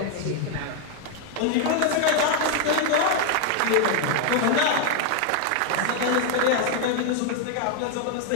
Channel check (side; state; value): both; different; correlation 0.00